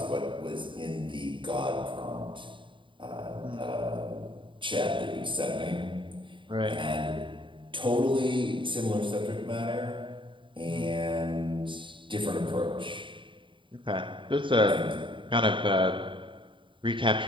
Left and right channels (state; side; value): late; left; 0.24 ms